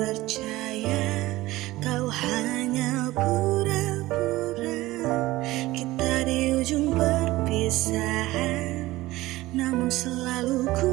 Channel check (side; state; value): left; quieter; 18.1 dB